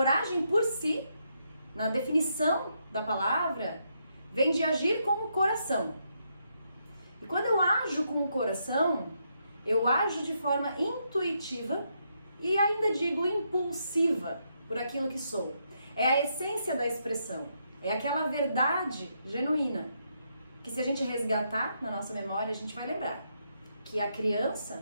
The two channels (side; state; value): both; inverted; correlation -0.78